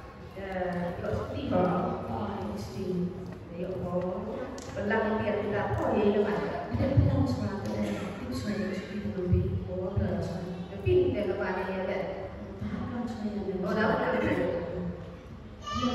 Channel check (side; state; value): both; identical; correlation 1.00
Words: có tí đó thì để có làm việc là có gì đâu mà để làm sao để tiếp xoay thì mình bị có là pin để các bạn nghe vậy ở đó là